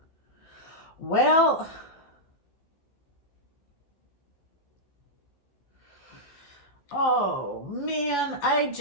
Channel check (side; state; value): right; late; 15 ms